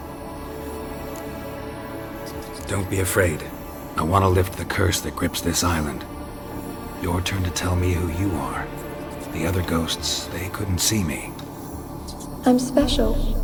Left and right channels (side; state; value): both; identical; correlation 1.00